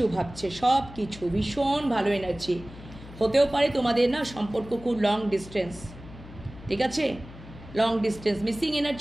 ভাবছে, সব কিছু ভীষণ ভালো এনার্জি। হতেও পারে তোমাদের না সম্পর্ক খুব লং ডিস্টেন্স, ঠিক আছে, লং ডিস্টেন্স, মিসিং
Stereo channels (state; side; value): noise; left; hum, 16 dB below the sound